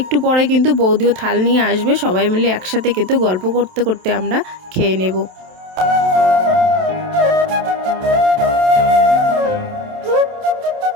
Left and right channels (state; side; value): late; left; 27 ms